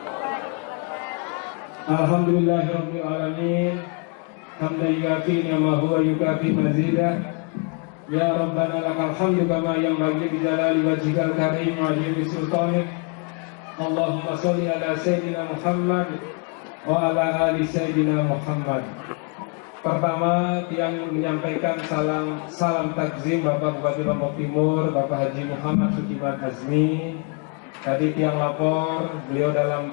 Alhamdulillahirabbil alamin. Hamdan yukafi ni'amahu wa yukafi mazidah. Ya Rabbana lakal hamdu kama yanbaghi li jalali wajhikal karim wa jili sultanik. Allahumma shalli ala sayyidina Muhammad wa ala ali sayyidina Muhammad. Pertama, yang menyampaikan salam takzim Bapak Bupati Lombok Timur, Bapak Haji Muhammad Sukiman Azmi. Tadi tiang lapor, beliau dalam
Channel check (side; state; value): right; quieter; 34.9 dB